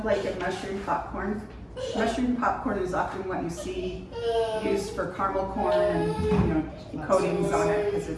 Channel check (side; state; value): both; identical; correlation 1.00